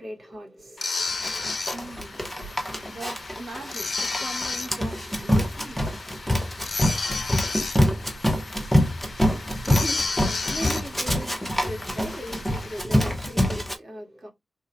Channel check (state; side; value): normal; both; correlation 0.93